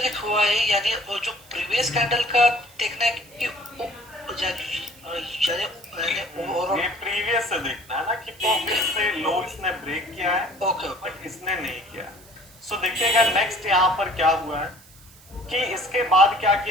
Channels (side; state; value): right; noise; hiss, 24 dB below the sound